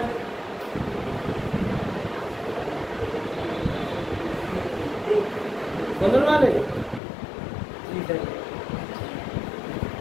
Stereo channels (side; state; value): right; drops out; at 7.0 s